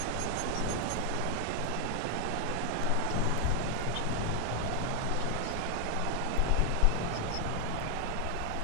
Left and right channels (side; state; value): both; different; correlation 0.00